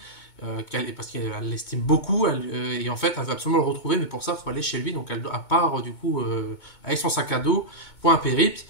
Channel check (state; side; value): late; right; 2.2 ms